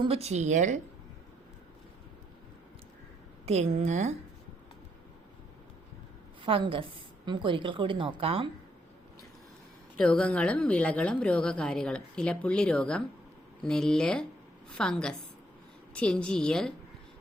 ചീയൽ തെങ്ങ്, ഫംഗസ്. നമുക്കൊരിക്കൽ കൂടി നോക്കാം. രോഗങ്ങളും വിളകളും രോഗകാരികളും. ഇലപ്പുള്ളി രോഗം നെല്ല്, ഫംഗസ്. ചെഞ്ചീയൽ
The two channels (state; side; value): normal; both; correlation 0.73